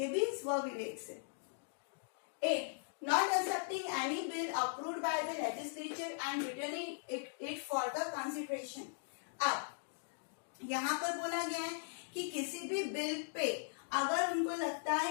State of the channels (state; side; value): silent; right; digital silence